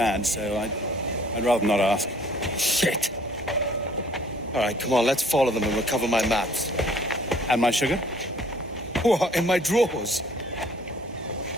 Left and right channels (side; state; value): both; normal; correlation 0.57